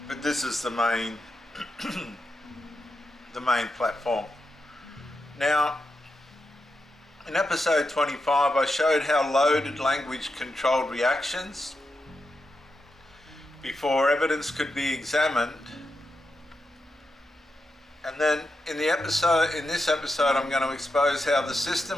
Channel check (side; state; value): both; normal; correlation 0.87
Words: but this is the main the main platform. Now, in episode 25, I showed how loaded language controlled reactions before evidence could be examined. And then in this episode, I'm going to expose how the